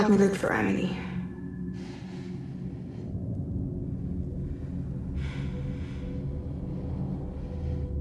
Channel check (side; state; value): both; identical; correlation 1.00